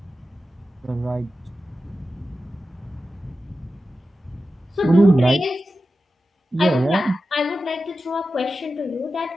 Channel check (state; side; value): normal; both; correlation 0.92